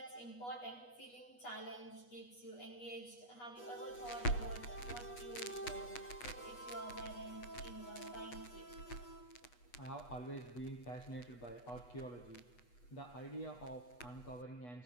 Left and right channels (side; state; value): right; late; 8.2 ms